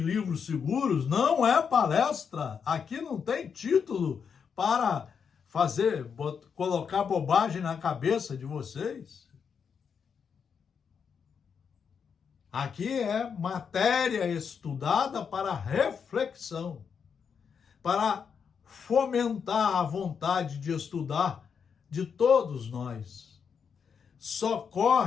seguros, não é palestra, aqui não tem título para colocar bobagem na cabeça de vocês. Aqui é matéria estudada para reflexão, para fomentar a vontade de estudar de todos nós.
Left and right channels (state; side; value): quieter; right; 6.6 dB